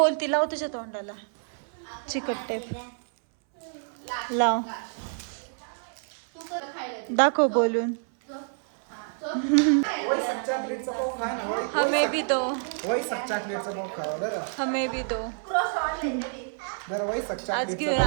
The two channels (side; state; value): left; silent; 59 dB below the other